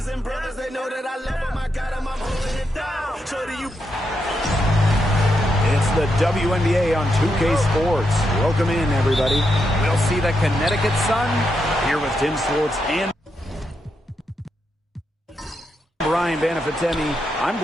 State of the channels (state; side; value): normal; both; correlation 0.83